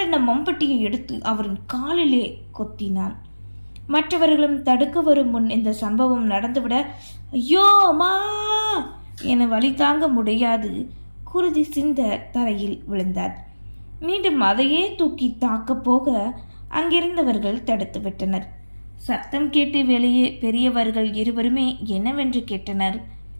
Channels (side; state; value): both; inverted; correlation -1.00